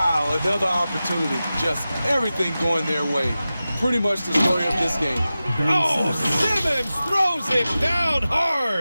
another opportunity. Just everything going their way. Pretty much the story of this game. Oh, Simmons throws it down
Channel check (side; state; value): both; inverted; correlation -0.94